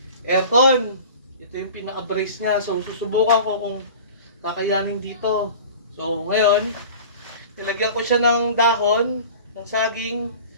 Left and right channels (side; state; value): both; inverted; correlation -0.39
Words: aircon. Ito yung pinaka-brace niya. So, susubukan ko kung kakayanin dito. So, ngayon, nilagyan ko siya ng dahon, ng saging,